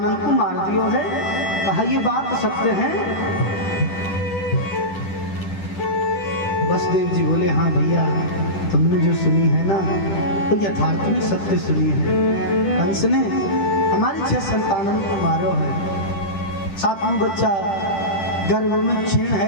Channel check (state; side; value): late; right; 10 ms